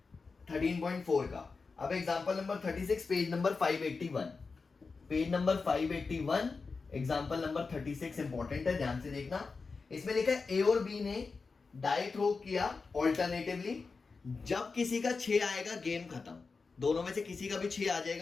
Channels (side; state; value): right; quieter; 4.5 dB